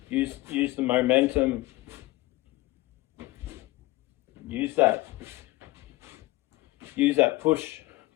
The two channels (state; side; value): quieter; right; 19.7 dB